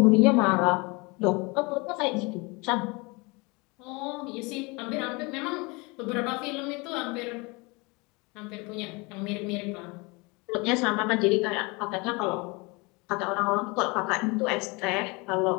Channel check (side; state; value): right; quieter; 27.1 dB